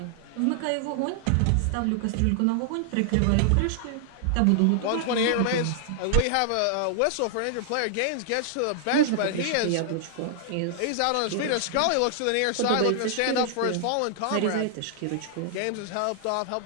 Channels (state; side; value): different; both; correlation -0.01